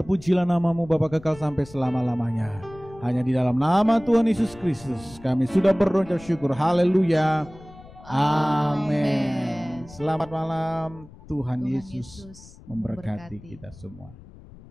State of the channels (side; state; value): left; noise; rumble, 20 dB below the sound